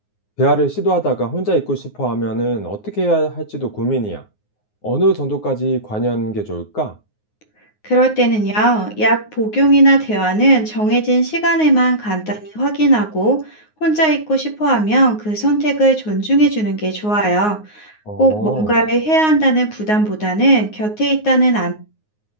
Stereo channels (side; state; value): right; late; 9.5 ms